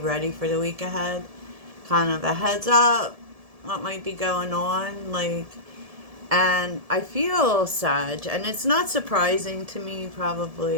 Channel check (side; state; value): left; late; 1.7 ms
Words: for the week ahead. Kind of a heads up what might be going on, and I feel Sag, and it's not surprising to me,